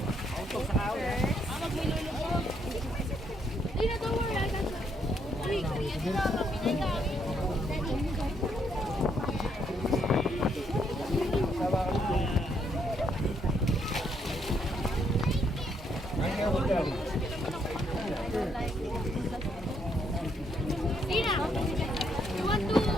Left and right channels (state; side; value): normal; both; correlation 0.73